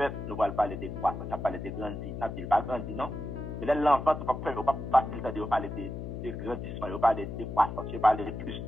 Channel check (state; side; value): noise; left; hum, 7 dB below the sound